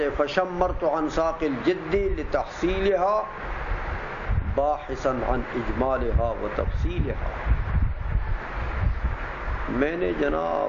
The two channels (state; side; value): identical; both; correlation 1.00